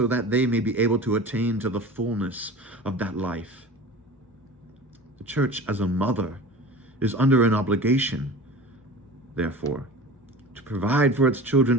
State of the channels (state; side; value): normal; both; correlation 0.36